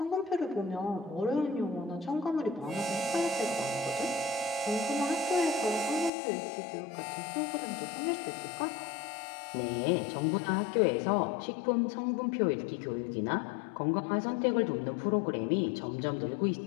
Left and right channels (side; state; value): right; drops out; at 6.1 s